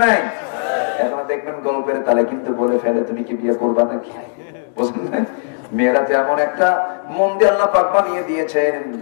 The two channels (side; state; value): right; silent; 67 dB below the other